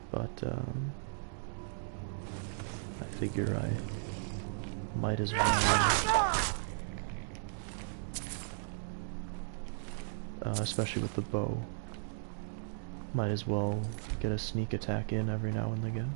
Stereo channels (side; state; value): left; silent; digital silence